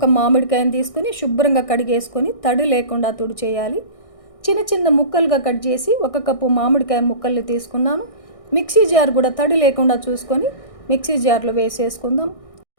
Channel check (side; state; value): right; late; 1.6 ms